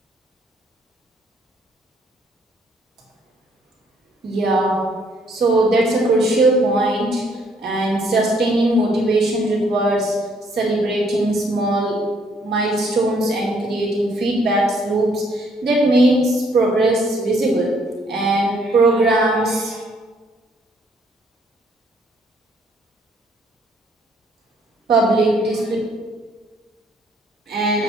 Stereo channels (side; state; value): both; normal; correlation 0.66